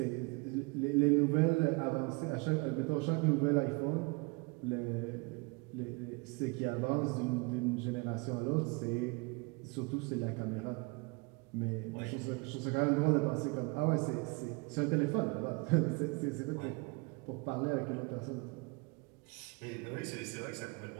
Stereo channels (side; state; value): left; quieter; 28.9 dB